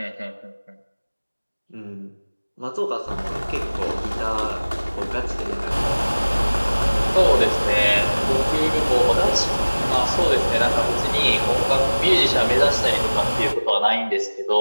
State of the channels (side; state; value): both; inverted; correlation -1.00